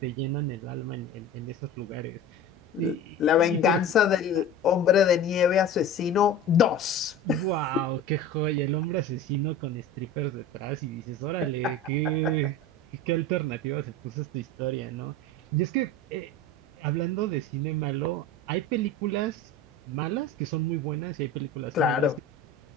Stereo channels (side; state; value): both; normal; correlation 0.34